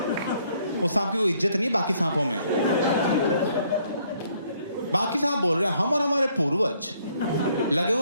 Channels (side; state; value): both; inverted; correlation -0.67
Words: वो सांप की कोई इज्जत नहीं बाकी सांपों में। बाकी सांप बोल रहे हैं हम और हमारे पूर्वज लगे